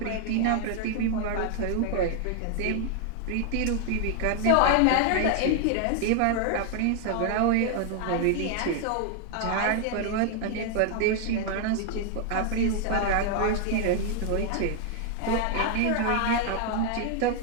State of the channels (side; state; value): both; different; correlation 0.00